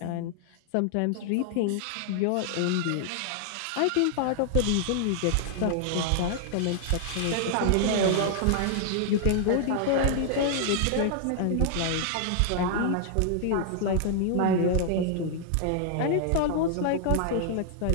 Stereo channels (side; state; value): both; different; correlation -0.01